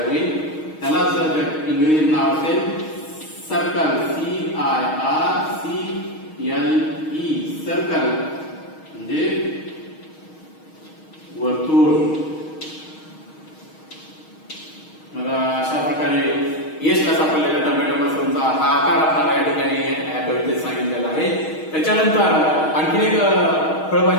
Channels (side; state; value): right; late; 6.4 ms